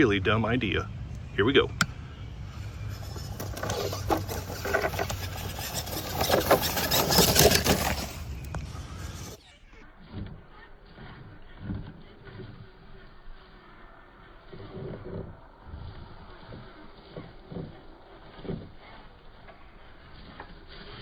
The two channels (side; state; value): both; identical; correlation 1.00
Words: dumb idea. Here we go.